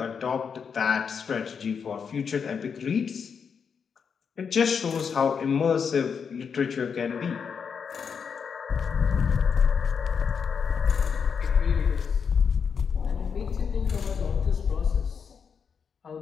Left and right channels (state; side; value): quieter; right; 6.4 dB